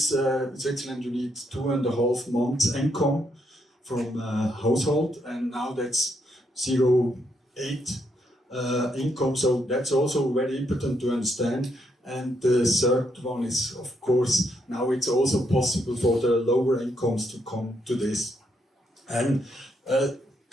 you need 2.5 months income from a household, and now that's 0.8 income. So that's also very important to understand. And the third one is, of course, now it's also possible for the lower incomes to come to this. And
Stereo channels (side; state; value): both; normal; correlation 0.76